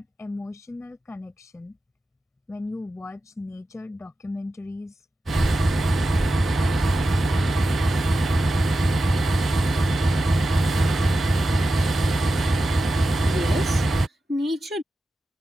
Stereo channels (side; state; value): both; normal; correlation 0.92